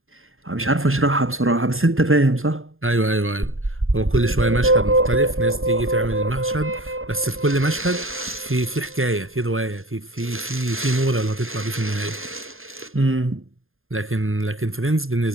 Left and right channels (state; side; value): late; left; 0.60 ms